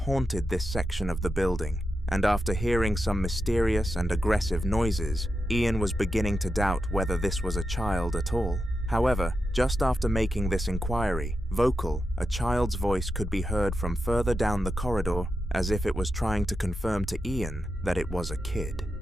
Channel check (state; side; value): normal; both; correlation 0.88